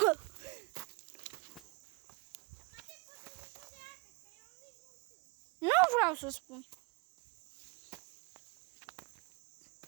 Nu vreau să spun.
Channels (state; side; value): quieter; left; 27.7 dB